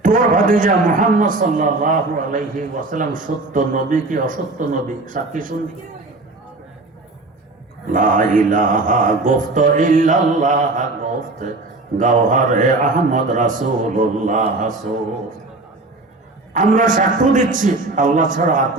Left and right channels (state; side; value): quieter; left; 3.1 dB